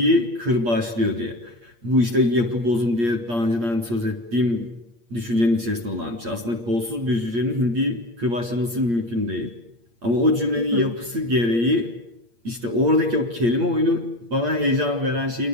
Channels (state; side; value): late; left; 8.6 ms